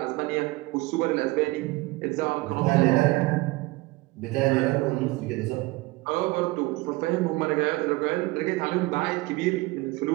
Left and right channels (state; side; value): quieter; left; 22.1 dB